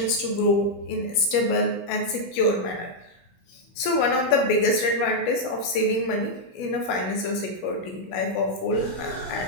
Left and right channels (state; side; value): late; right; 16 ms